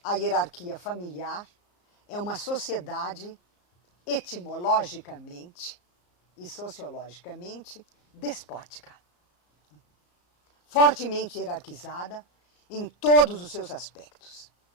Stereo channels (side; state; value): right; late; 34 ms